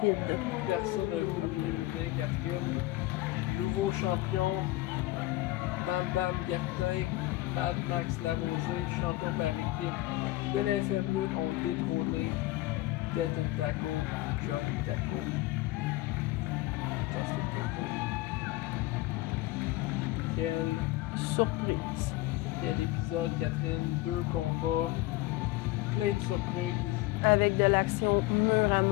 Personne n'a rien vu venir, Catherine. Nouveau champion. Bam Bam Guertin, Mad Max Larosée, champion par équipe de la FM Lutte, ont détrôné Death and Taco, Johnny Taco et Justin Turnbull. Quelle surprise. Quel épisode, Catherine. 2 combats, plein de surprises. Avec de l'action mur à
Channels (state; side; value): quieter; right; 18.3 dB